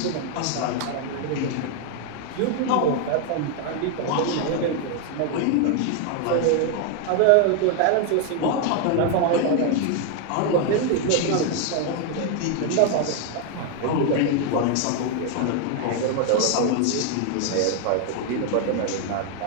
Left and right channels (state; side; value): different; both; correlation 0.00